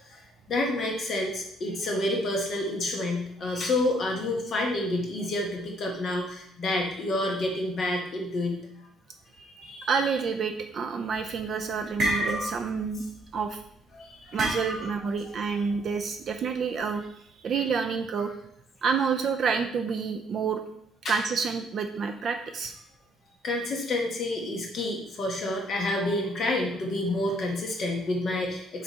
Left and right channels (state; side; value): normal; both; correlation 0.66